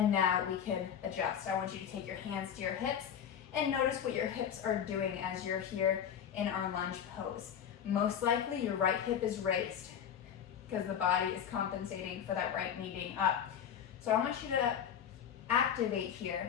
now we can adjust. I want you to take your hands to your hips and notice what your hips are doing as you're here in our lunge pose. Most likely your right hip is raised because the body is compensating for that right knee being up. So I want you to activate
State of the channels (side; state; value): right; quieter; 8.6 dB